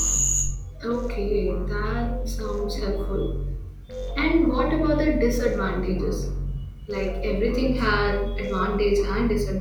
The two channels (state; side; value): identical; both; correlation 1.00